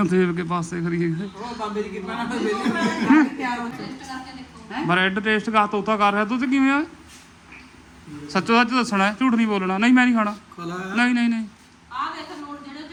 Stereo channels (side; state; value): both; identical; correlation 1.00